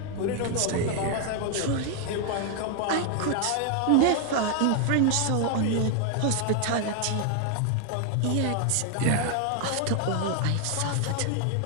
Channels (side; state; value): both; different; correlation 0.00